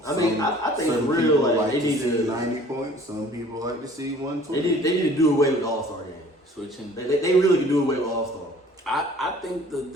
I mean, I think some for real, people like, like they to need see to- 90 points. Some people like to see 120. They need to do away with the All-Star game. Switching. They really can do away with All-Star. I think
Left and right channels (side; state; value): both; normal; correlation 0.52